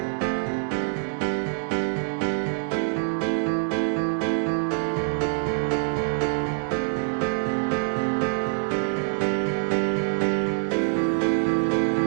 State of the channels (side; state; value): left; silent; digital silence